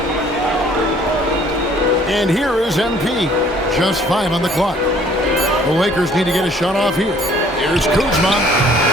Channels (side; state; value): both; normal; correlation 0.58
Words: And here is MP. Just 5 on the clock. The Lakers need to get a shot off here. Here's Kuzma.